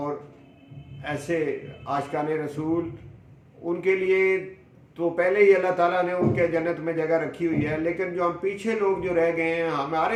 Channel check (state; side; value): identical; both; correlation 1.00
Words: ऐसे आशिकाने रसूल, उनके लिए तो पहले ही अल्लाह ताला ने उनके जन्नत में जगह रखी हुई है, लेकिन जो हम पीछे लोग जो रह गए हैं,